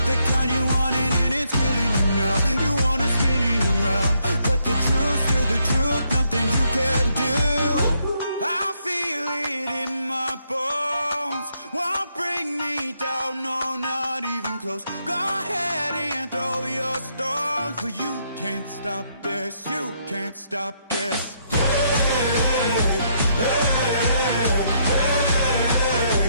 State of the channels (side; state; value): both; inverted; correlation -0.74